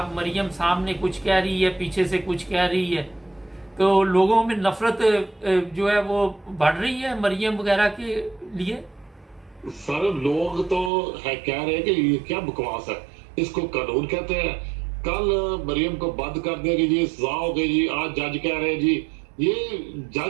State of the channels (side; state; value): left; drops out; at 10.9 s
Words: مریم سامنے کچھ کہہ رہی ہے، پیچھے سے کچھ کہہ رہی ہے، تو لوگوں میں نفرت جو ہے وہ بڑھ رہی ہے مریم وغیرہ کے لیے؟ سر لوگ تو کہہ رہے ہیں کہ یہ کیا بکواس ہے، اس کو قانون کہتے ہیں، کل مریم کو بند کر دے گی جی، سزا ہو گئی جی، آج جج کہہ رہے ہیں جی، یہ